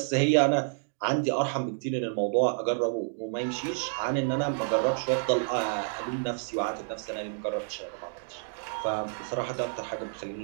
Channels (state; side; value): silent; left; digital silence